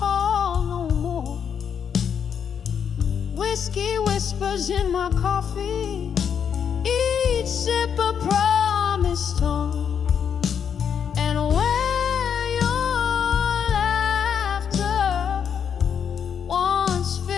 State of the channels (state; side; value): quieter; right; 7.6 dB